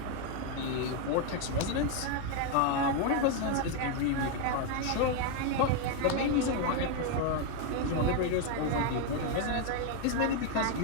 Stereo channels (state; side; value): different; both; correlation 0.01